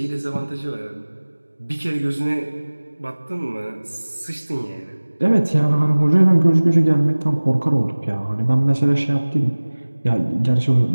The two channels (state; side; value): inverted; both; correlation -1.00